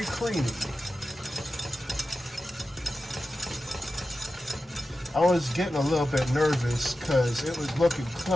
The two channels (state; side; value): normal; both; correlation 0.93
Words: creamy. I was getting a little bit nervous because it was looking